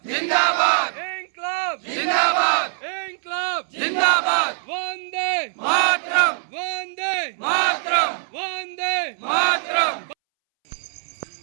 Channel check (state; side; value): silent; left; 64 dB below the other